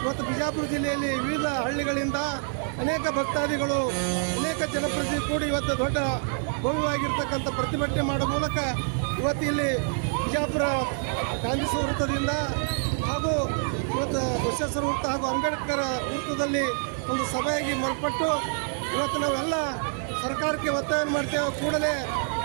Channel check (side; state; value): left; silent; 59 dB below the other